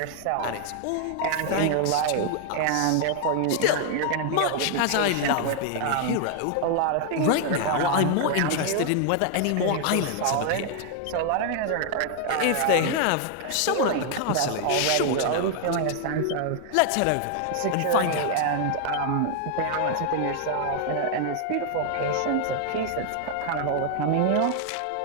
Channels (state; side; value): different; both; correlation 0.00